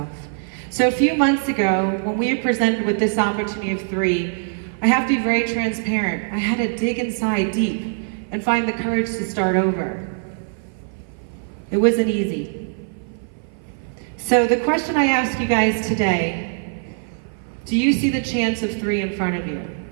So a few months ago, when we were presented with this opportunity of 3, I have to be very transparent. I had to dig inside deep and find the courage to start over. It wasn't easy. So the question I ask you guys today, do you see the chance of 3 in front of you?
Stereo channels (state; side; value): silent; left; 58 dB below the other